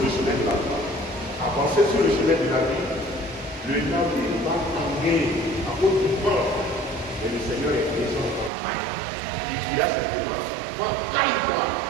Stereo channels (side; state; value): left; drops out; at 8.5 s